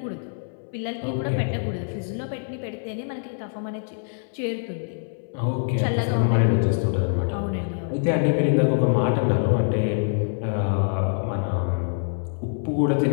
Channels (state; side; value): silent; right; 62 dB below the other